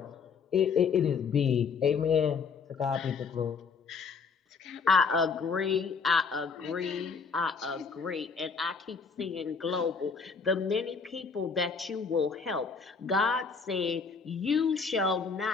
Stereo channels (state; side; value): quieter; right; 5.3 dB